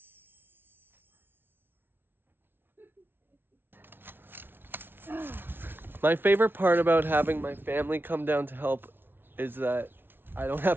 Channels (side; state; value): left; late; 0.10 ms